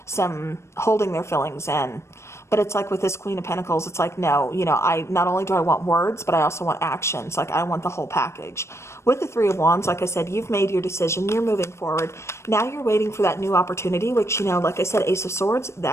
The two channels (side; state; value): right; late; 0.13 ms